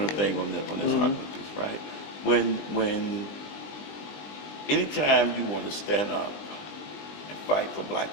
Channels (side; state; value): right; late; 20 ms